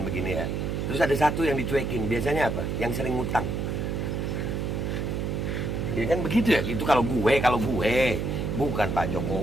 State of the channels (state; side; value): noise; right; hum, 1 dB below the sound